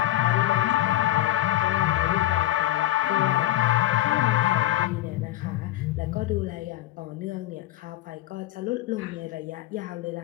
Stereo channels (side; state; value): right; quieter; 15.2 dB